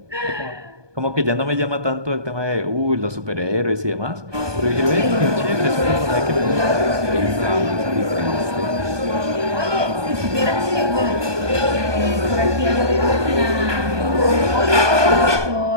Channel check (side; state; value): left; late; 1.2 ms